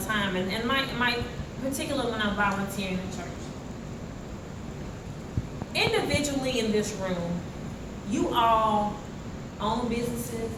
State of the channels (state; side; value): identical; both; correlation 1.00